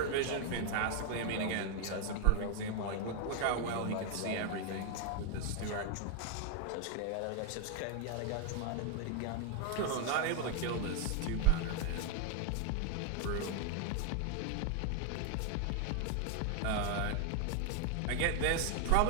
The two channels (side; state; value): both; different; correlation 0.01